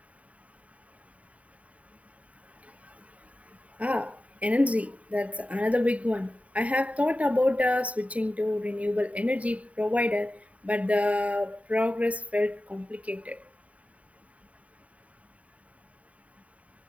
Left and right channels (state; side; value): late; left; 0.068 ms